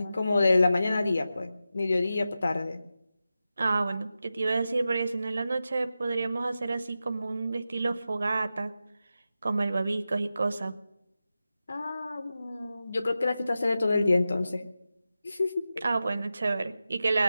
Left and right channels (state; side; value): inverted; both; correlation -0.91